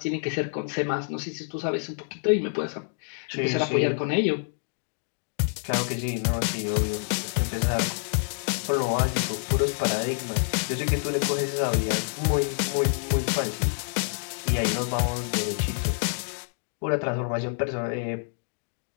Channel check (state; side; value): silent; right; digital silence